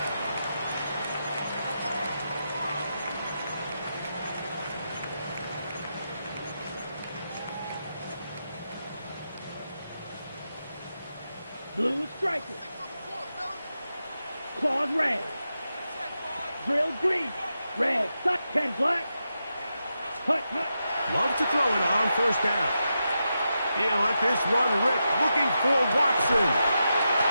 Blue striker. Claws red. Drill green. Red. 10 black. Hut. Love to throw it on first down. He'll let this run rip, looking for Watson.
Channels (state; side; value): inverted; both; correlation -0.87